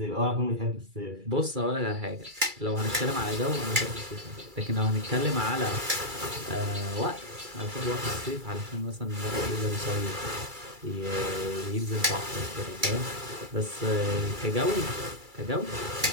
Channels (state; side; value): late; left; 2.3 ms